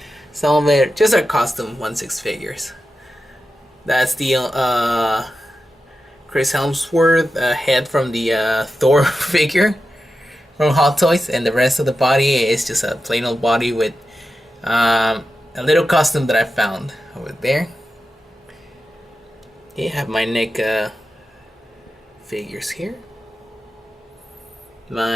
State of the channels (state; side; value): normal; both; correlation 0.91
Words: Some of it just are custom 1/6 figures. That's the Chris Hemsworth head from the Thor figure from Hot Toys, and the rest of the body is just a plain old body with a little custom that I found over there. You have my NECA figures here.